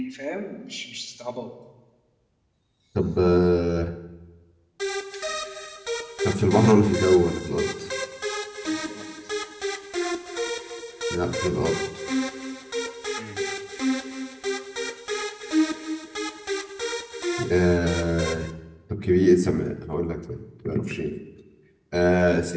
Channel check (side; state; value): both; identical; correlation 1.00